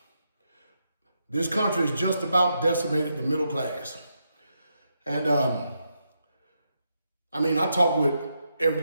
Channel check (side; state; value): both; inverted; correlation -0.82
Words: This country is just about decimated the middle class. And I talk with